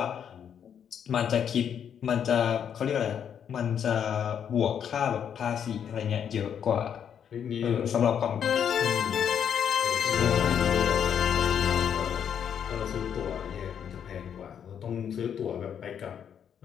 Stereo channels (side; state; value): right; quieter; 8.4 dB